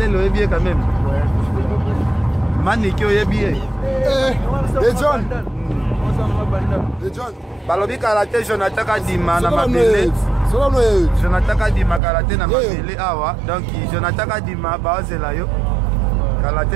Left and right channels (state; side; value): drops out; left; at 12.0 s